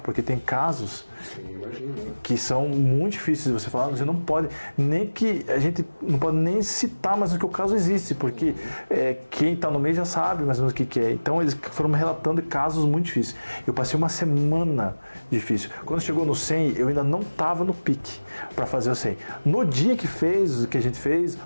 tem casos que são muito difíceis de você falar, você não pode, nem que a gente não pode nem citar, mas que o caso existe, porque quem está no meio já sabe mais ou menos o que é. Então eles foram me relatando casos muito difíceis. Eu passei uma semana difícil. Quando chegou no 100, eu ainda não estava no pique para fazer o 100. No dia que a gente fez,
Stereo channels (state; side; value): inverted; both; correlation -1.00